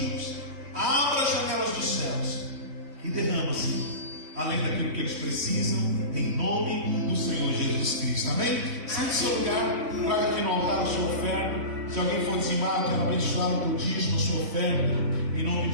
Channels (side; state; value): left; late; 3.6 ms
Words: abra as janelas dos céus e derrama, Senhor, além daquilo que eles precisam, em nome do Senhor Jesus Cristo. Amém? Sente seu lugar, guarda aqui no altar a sua oferta. Se alguém for dizimado, quero abençoar o teu dízimo, a sua oferta, em nome